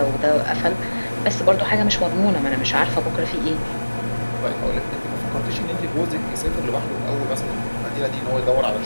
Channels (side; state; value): both; inverted; correlation -1.00